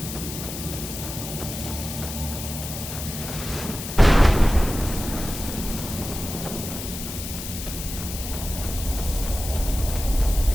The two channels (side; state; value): left; noise; hiss, 8 dB below the sound